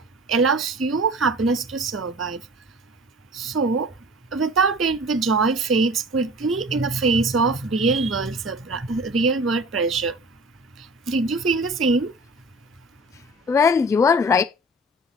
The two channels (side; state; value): both; normal; correlation 0.42